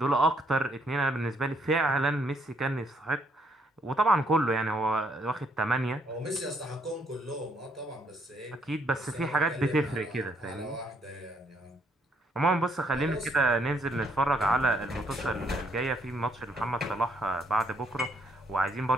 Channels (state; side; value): normal; both; correlation 0.70